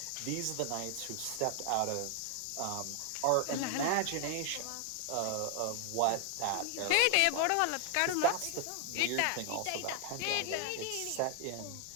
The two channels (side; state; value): both; different; correlation 0.00